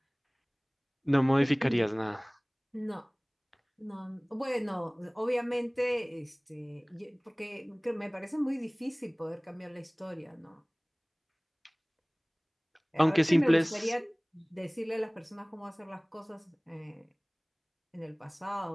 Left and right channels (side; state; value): both; identical; correlation 1.00